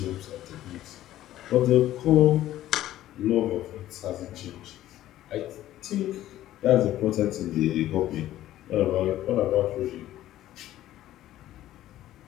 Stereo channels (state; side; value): quieter; right; 13.7 dB